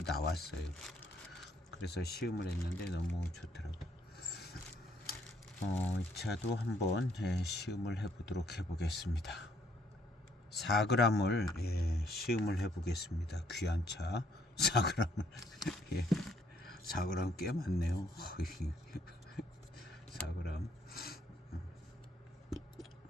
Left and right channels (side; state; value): both; normal; correlation 0.67